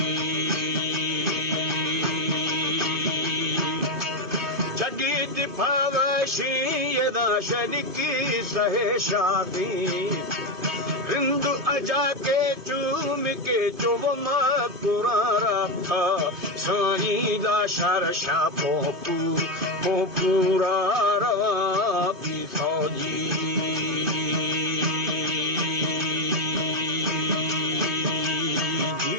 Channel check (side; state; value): left; late; 2.5 ms